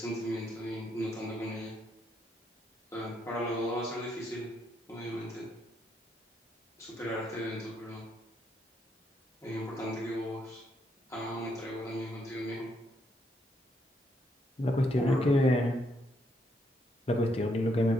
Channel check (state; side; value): normal; both; correlation 0.75